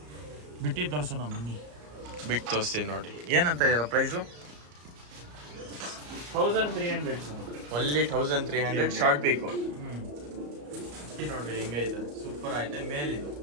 ಬಿಟ್ಟು ತೋರ್ಸೋಣ ಬನ್ನಿ. ಬಿಟ್ಟು ತೋರಿಸ್ತೀನಿ ನೋಡಿ. ಏನಂತ ಇದರ ಪ್ರೈಸು? 1300 ಸರ್. ಒನ್ಲಿ 1300 ಶಾರ್ಟ್ ಬೇಕು. ನೋಡ್ರಿ ಹೆಂಗೈತೆ, ಸೂಪರ್ ಐತೆ. ಮೇಲಿದು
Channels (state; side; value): late; left; 34 ms